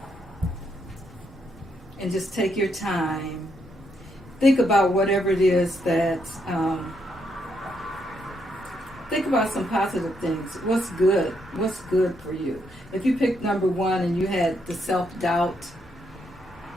and just take your time, think about whatever it is that, think about some positive things. What's good for you? If you picked number 1 and you had the self-doubt,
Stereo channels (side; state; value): both; normal; correlation 0.77